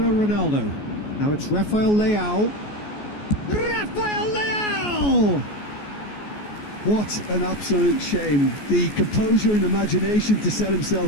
Ronaldo. Now it's Rafael Leao. Rafael Leao! What an absolute shame. The composure and imagination to set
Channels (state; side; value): late; right; 14 ms